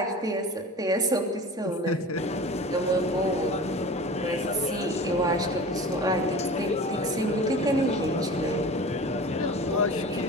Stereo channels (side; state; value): both; normal; correlation 0.36